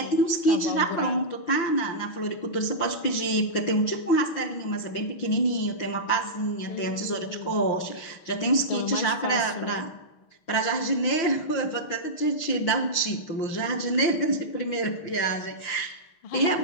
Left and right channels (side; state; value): right; late; 6.2 ms